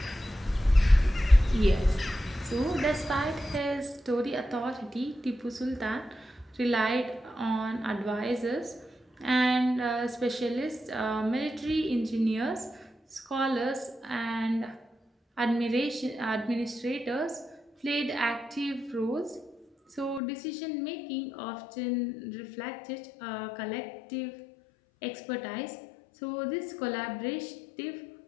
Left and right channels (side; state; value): right; drops out; at 20.2 s